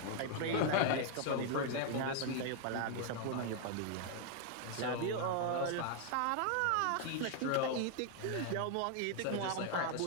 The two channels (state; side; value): different; both; correlation 0.00